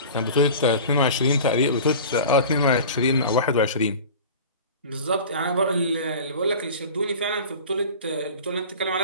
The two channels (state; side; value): inverted; both; correlation -0.37